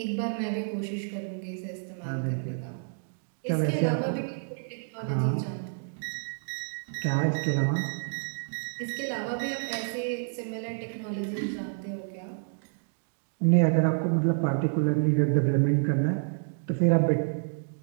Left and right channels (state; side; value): silent; left; digital silence